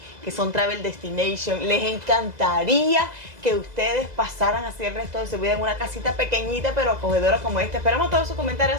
que son Travel Destination? ¿Les encantaría que ustedes pasaran así el resto de su vida en una casita pequeñita pero acogedora como esta? Esperamos todos sus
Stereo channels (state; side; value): late; left; 2.0 ms